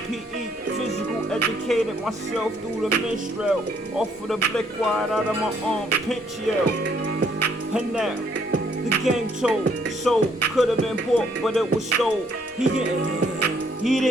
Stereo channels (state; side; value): normal; both; correlation 0.67